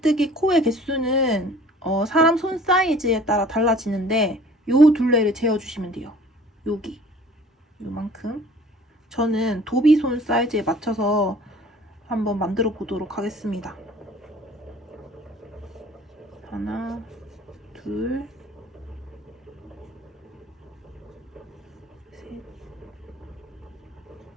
코의 개수는 사람 손 사이즈에 따라 달라지는데 요 둘레를 재어주시면 돼요. 여기 요만큼. 저는 도비손 사이즈에 맞춰서 한번 만들어 보도록 하겠습니다. 하나, 둘, 셋,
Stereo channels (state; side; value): normal; both; correlation 0.49